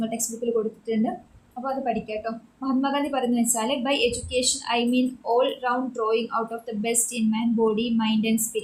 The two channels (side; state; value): both; identical; correlation 1.00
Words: ടെക്സ്റ്റ് ബുക്കിൽ കൊടുത്തിട്ടുണ്ട്. അപ്പോൾ അത് പഠിക്കാം കേട്ടോ. മഹാത്മാഗാന്ധി പറയുന്നത് വെച്ചാൽ by education I mean all round drawing out of the best in man body mind and